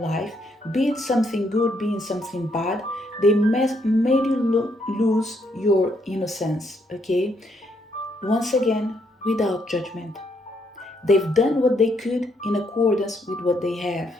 be it something good, be it something bad, they made you lose your innocence, okay? Once again, without judgment. They've done what they could in accordance with what they have.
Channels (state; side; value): normal; both; correlation 0.73